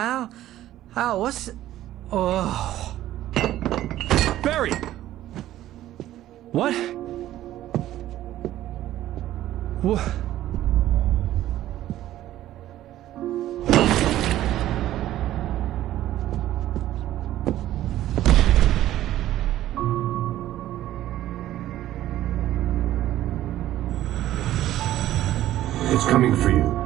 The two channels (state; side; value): quieter; left; 13.6 dB